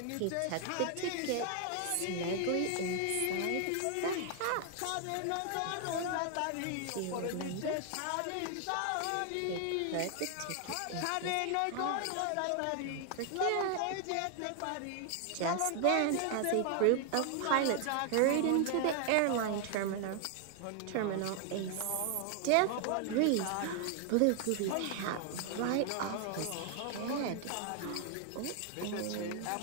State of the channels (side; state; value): both; different; correlation 0.00